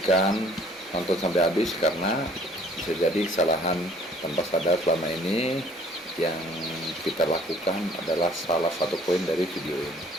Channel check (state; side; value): normal; both; correlation 0.56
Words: nonton sampai habis karena bisa jadi kesalahan tanpa sadar selama ini yang kita lakukan adalah salah satu poin dari video ini.